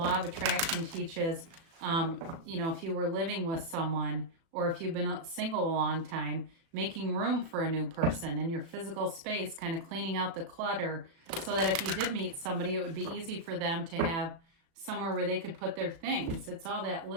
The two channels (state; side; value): late; left; 36 ms